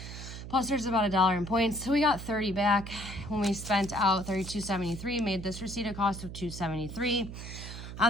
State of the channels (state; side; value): noise; right; hum, 10 dB below the sound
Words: Plus, there's about $1 in points, so we got $30 back when we spent out $32.73. Made this receipt a cost of $2.73.